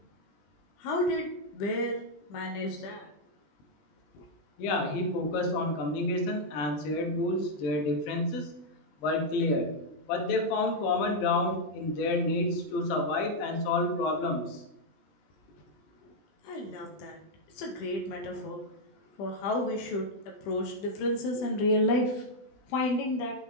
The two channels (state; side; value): late; right; 20 ms